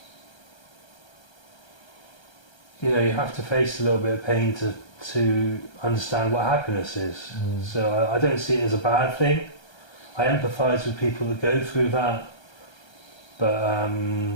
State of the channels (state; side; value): late; right; 1.3 ms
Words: you have to face a little bit of pain to understand what happiness is. So I don't see it as a bad thing. I empathise with people that go through that, but